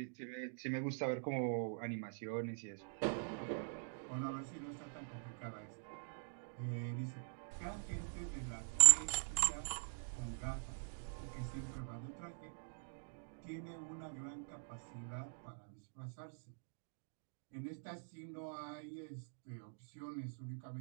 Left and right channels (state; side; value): silent; left; digital silence